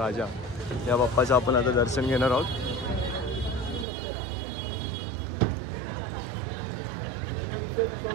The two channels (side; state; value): left; drops out; at 3.9 s